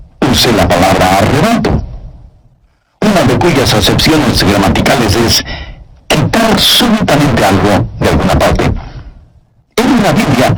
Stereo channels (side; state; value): both; identical; correlation 1.00